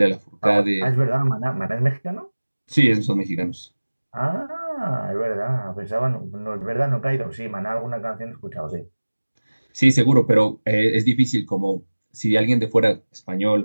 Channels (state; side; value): inverted; both; correlation -1.00